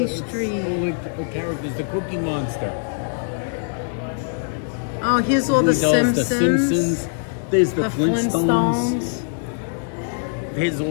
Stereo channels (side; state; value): right; silent; digital silence